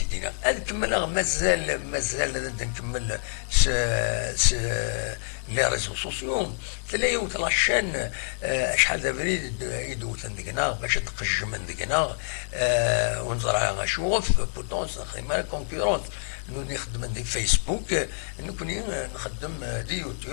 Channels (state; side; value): silent; right; 60 dB below the other